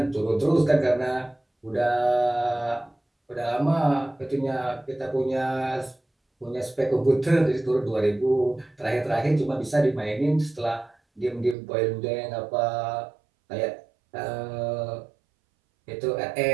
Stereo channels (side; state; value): left; drops out; at 11.6 s